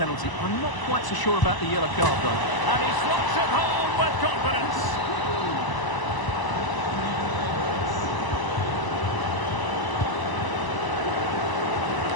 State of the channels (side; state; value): right; late; 1.0 ms